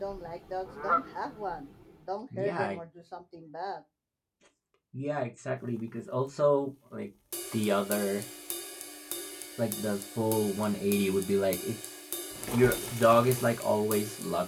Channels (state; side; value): identical; both; correlation 1.00